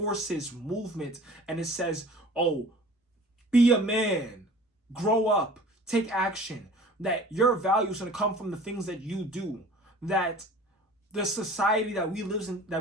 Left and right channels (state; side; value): normal; both; correlation 0.45